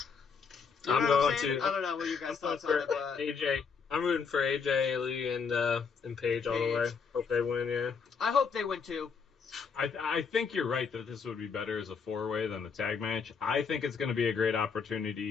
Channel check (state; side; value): quieter; right; 5.7 dB